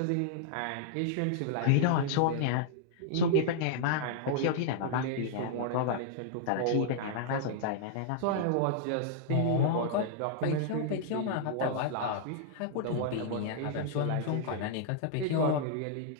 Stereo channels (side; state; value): both; different; correlation -0.01